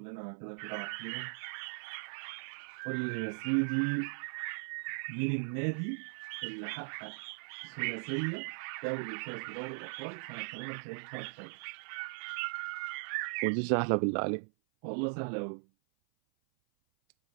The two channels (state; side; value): silent; left; 52 dB below the other